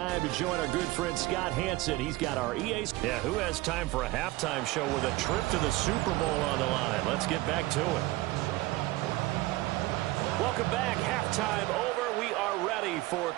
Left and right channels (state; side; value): quieter; left; 19.4 dB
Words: to join our good friend Scott Hansen. He's got our EA. Yeah, who has time for a halftime show with a trip to the Super Bowl on the line? Let's get back to it. Welcome back. Halftime over. We are ready for